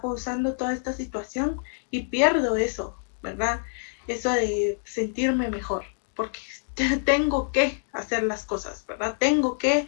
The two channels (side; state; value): right; silent; digital silence